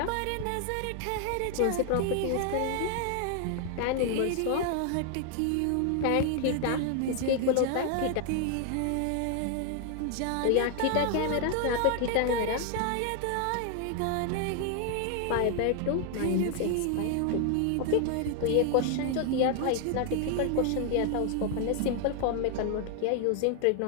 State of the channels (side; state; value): both; different; correlation 0.00